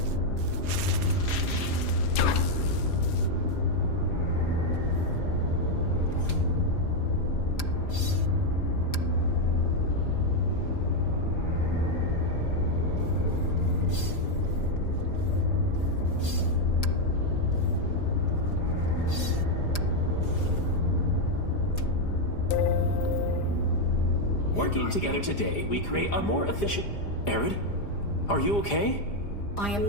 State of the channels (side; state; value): right; late; 4.9 ms